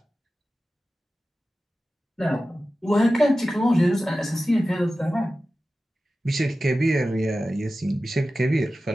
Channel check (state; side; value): normal; both; correlation 0.94